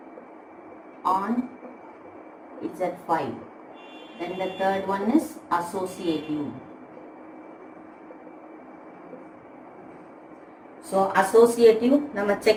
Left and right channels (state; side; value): identical; both; correlation 1.00